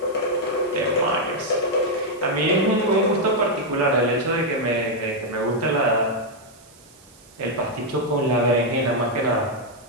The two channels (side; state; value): right; noise; hiss, 26 dB below the sound